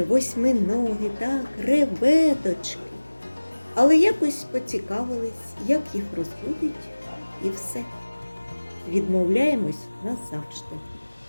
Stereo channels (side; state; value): both; inverted; correlation -1.00